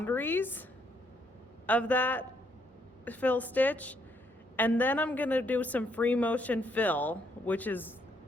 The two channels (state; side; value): normal; both; correlation 0.72